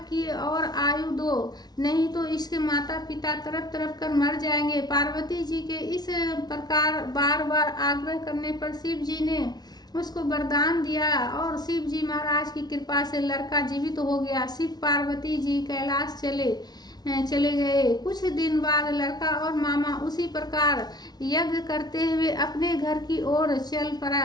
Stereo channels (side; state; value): right; late; 0.19 ms